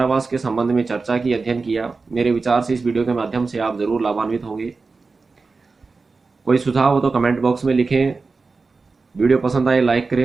के संबंध में चर्चा की, अध्ययन किया। मेरे विचार से इस वीडियो के माध्यम से आप जरूर लाभान्वित होंगे। कोई सुझाव हो तो कमेंट बॉक्स में लिखें। वीडियो पसंद आए लाइक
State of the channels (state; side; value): quieter; left; 4.2 dB